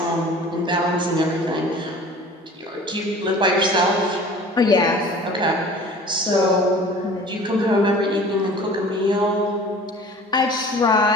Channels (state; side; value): normal; both; correlation 0.45